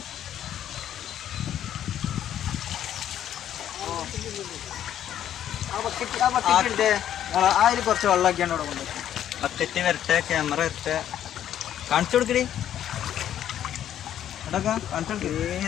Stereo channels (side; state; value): right; quieter; 10.7 dB